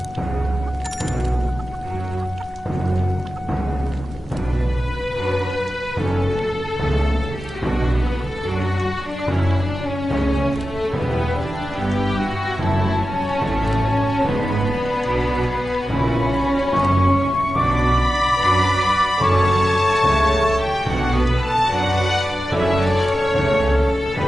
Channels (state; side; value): normal; both; correlation 0.93